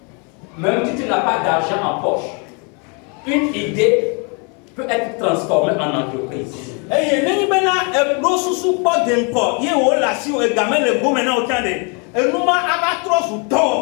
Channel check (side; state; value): right; quieter; 34.8 dB